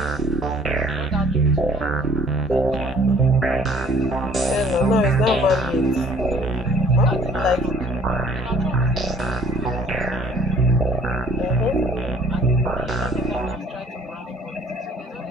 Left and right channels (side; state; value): both; normal; correlation 0.56